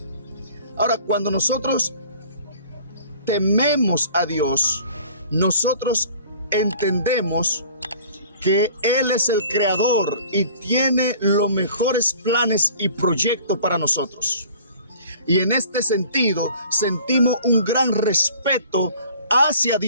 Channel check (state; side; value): inverted; both; correlation -0.49